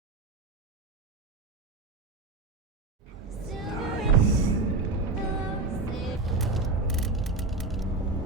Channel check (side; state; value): left; quieter; 3.6 dB